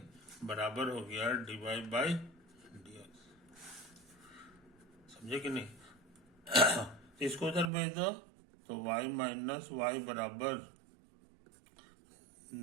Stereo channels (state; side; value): drops out; left; at 7.7 s